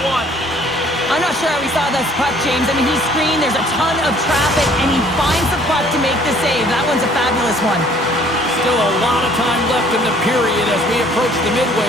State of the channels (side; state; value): both; normal; correlation 0.57